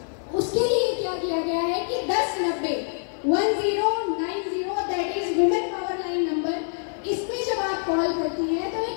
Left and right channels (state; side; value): silent; right; digital silence